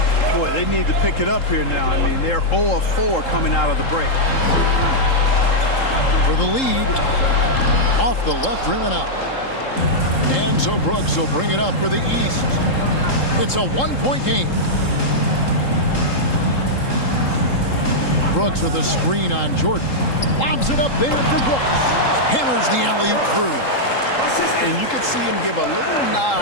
Boy, they need to pick it up here now. I mean, they're 0 of 4 coming out of the break. For the lead, off the left rim and out. And so Brooks will bring it up for the East. It's a 1-point game. Brooks with a screen on Jordan. Lobs it up there for Brooks. Hammers the alley-oop through. And you could see him give a little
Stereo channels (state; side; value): late; right; 3.7 ms